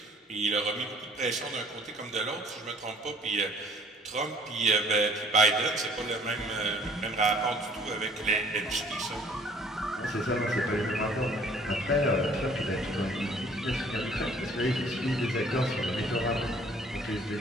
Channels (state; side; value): normal; both; correlation 0.56